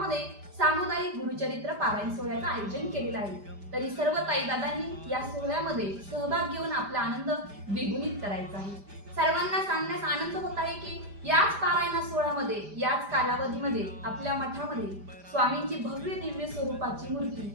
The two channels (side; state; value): left; late; 5.0 ms